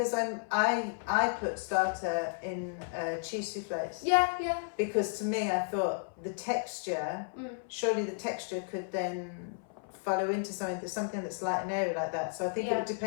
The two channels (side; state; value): right; silent; 56 dB below the other